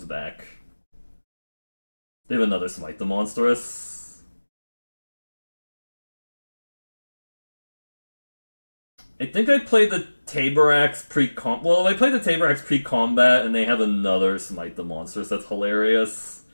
back. They have another Smite the Monstrous. I think I played the Tabarax pre-combat. Well, I played the Tabarax pre-combat, and they have another Smite the Monstrous. That's hilarious.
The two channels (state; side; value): inverted; both; correlation -1.00